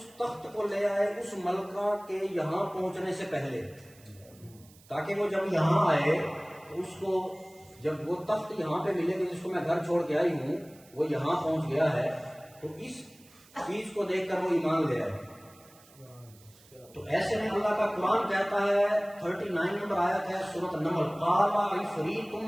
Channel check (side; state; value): right; noise; hiss, 26 dB below the sound